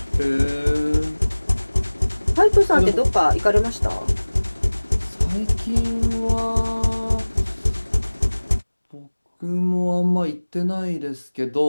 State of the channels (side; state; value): both; inverted; correlation -1.00